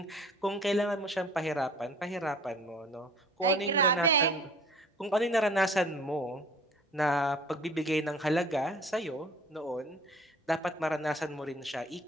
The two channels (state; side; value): normal; both; correlation 0.49